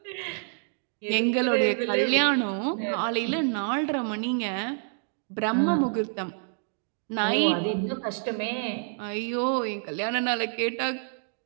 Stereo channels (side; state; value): left; silent; 58 dB below the other